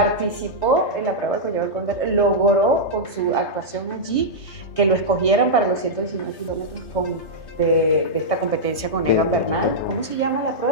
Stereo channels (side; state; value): right; late; 3.2 ms